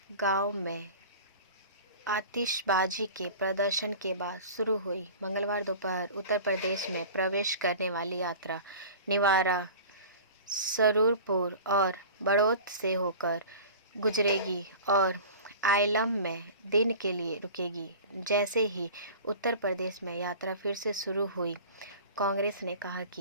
गांव में आतिशबाजी के प्रदर्शन के बाद शुरू हुई। मंगलवार दोपहर उत्तर प्रदेश में प्रवेश करने वाली यात्रा निवारा, सरूरपुर और बड़ौत से होकर गुजरेगी और आइलम में दिन के लिए रुकेगी। जैसे ही उत्तर प्रदेश में यात्रा फिर से शुरू हुई, कांग्रेस ने कहा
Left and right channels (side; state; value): both; inverted; correlation -0.38